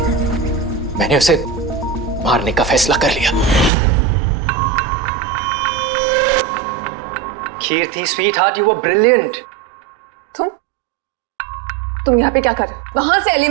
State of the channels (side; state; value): left; drops out; at 3.7 s